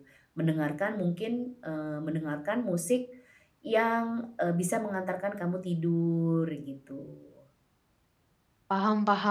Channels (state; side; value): identical; both; correlation 1.00